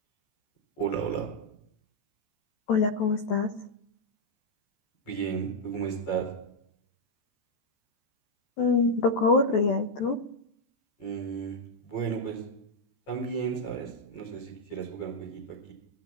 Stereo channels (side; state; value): right; late; 14 ms